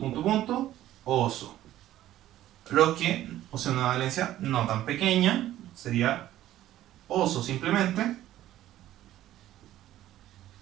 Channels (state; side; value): quieter; left; 13.6 dB